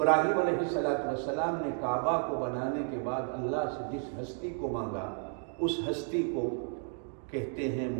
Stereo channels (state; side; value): silent; left; 56 dB below the other